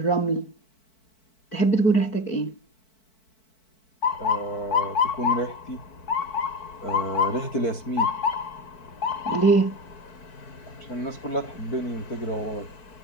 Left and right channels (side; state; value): right; late; 4.6 ms